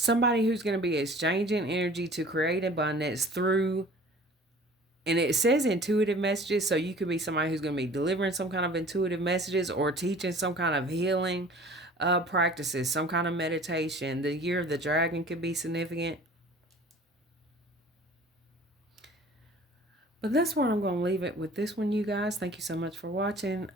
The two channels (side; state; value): both; normal; correlation 0.46